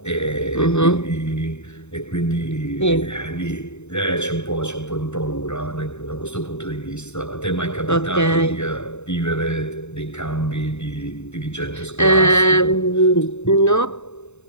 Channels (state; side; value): late; right; 0.82 ms